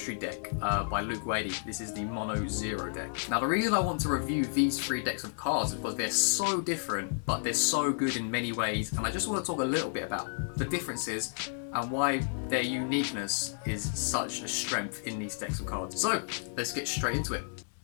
deck by Luke Wadey. This is the Mono Xero deck. Now the reason I want to review these three decks of cards is because they're so different, but they're so good in many ways. And I just want to talk a little bit about the differences and why their uniqueness is such a strength in these decks of cards. So, let's get straight into it.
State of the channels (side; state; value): right; silent; digital silence